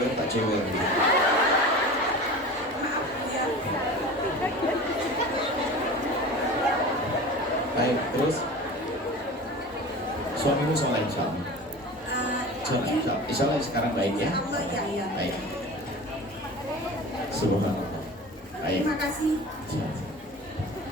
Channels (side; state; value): both; normal; correlation 0.36